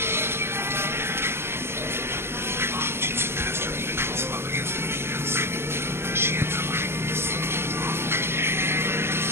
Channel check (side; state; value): left; late; 0.12 ms